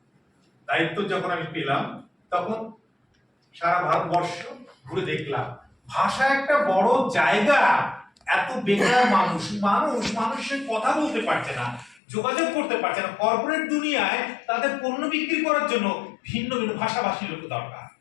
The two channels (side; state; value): right; drops out; at 12.0 s